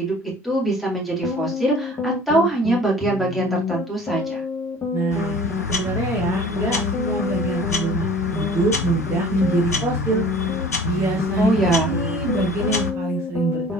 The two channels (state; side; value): normal; both; correlation 0.46